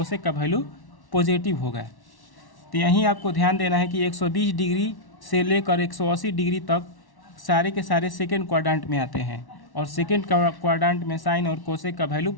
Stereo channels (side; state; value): right; late; 1.1 ms